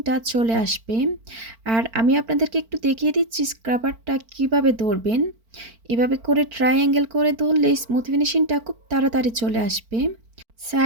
চলে আসবে। আর আমি আপনাদেরকে একটু দেখিয়ে দিচ্ছি স্ক্রাবারটা কিভাবে ধরবেন। এভাবে করে ট্রায়াঙ্গেল করে ধরলে স্মুথ ফিনিশিংটা খুব তাড়াতাড়ি চলে আসবে।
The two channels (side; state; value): left; late; 4.4 ms